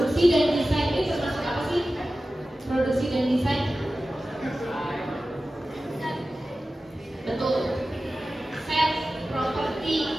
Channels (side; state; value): both; normal; correlation 0.95